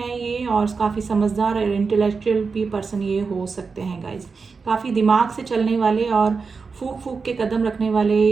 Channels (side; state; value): left; quieter; 4.9 dB